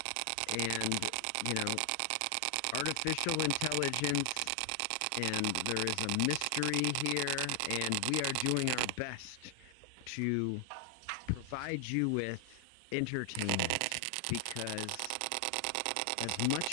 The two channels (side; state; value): both; different; correlation 0.00